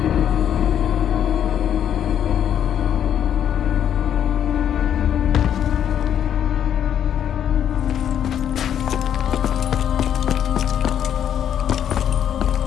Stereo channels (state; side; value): quieter; right; 9.6 dB